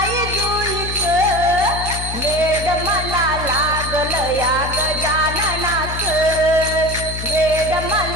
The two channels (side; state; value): left; noise; hum, 7 dB below the sound